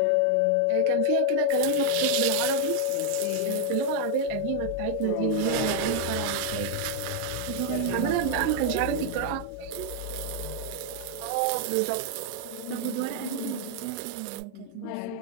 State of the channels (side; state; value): both; different; correlation 0.00